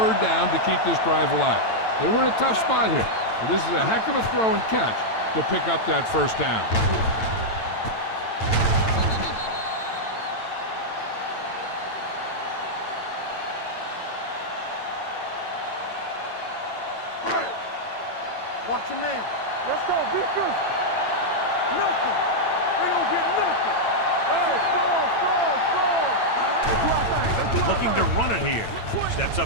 down to keep this drive alive. They were in a tough spot here, but this is a heck of a throw and catch to pick up that first down. Watch your man. Let's go. Be good. Nothing. They don't get nothing. Hey, score. Looking to run it here. Steps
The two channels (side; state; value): right; late; 8.9 ms